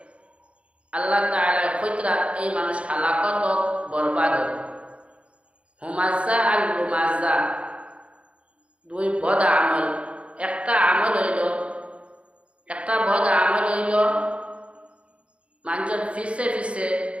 আল্লাহ তাআলা কয়তরা এই মানুষ হালাকত বরবাদ হুমাযা আর লুমাযা দুই পদ আমল একটা আমল হইল একটা বদ আমল হইল মানুষের ফিসে ফিসে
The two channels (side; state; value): left; late; 0.061 ms